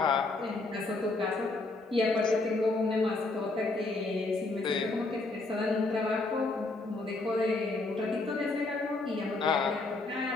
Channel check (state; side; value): quieter; right; 3.3 dB